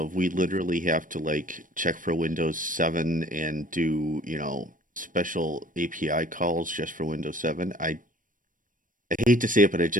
we literally have to like check for Windows 7 and do, special API calls just for Windows 7, I hate to say it, but I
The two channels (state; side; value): late; left; 0.39 ms